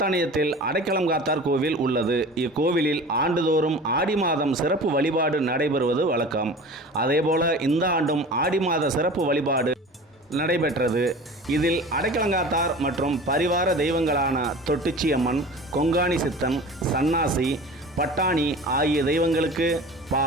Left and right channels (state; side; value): normal; both; correlation 0.38